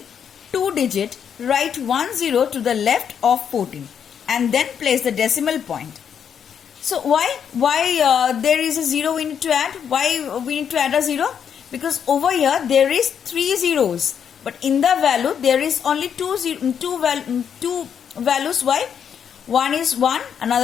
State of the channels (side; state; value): right; quieter; 7.9 dB